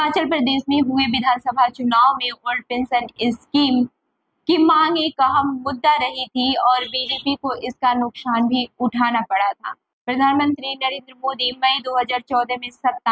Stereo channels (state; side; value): identical; both; correlation 1.00